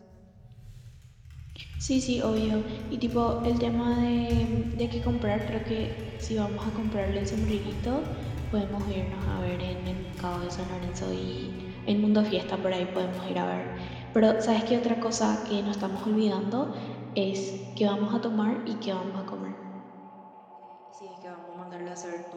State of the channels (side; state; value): both; identical; correlation 1.00